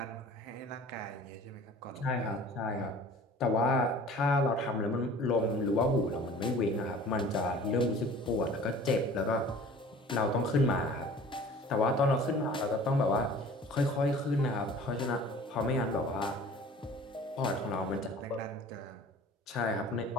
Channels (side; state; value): both; normal; correlation 0.45